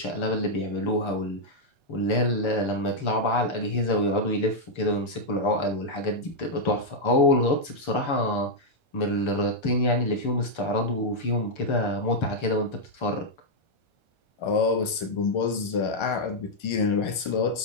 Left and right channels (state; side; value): late; right; 1.3 ms